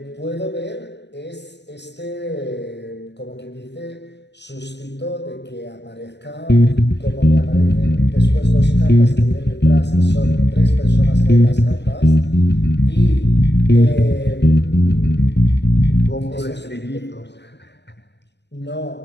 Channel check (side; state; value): right; late; 0.50 ms